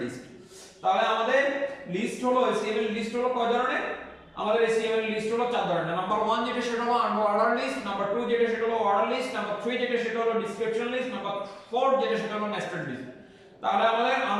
লিস্ট। তাহলে আমাদের লিস্ট হলো HTML লিস্ট হলো কয় ধরনের, আমাদের HTML লিস্ট হলো 4 ধরনের। নাম্বার 1 যেটা সেটা হলো আনঅর্ডার লিস্ট, নাম্বার 2 যেটা সেটা হলো অর্ডার লিস্ট, নাম্বার 3 যেটা সেটা হলো ডেসক্রিপশন লিস্ট, নাম্বার 4 যেটা সেটা হলো নেস্টেড লিস্ট। তাহলে আমাদের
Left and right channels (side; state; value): both; identical; correlation 1.00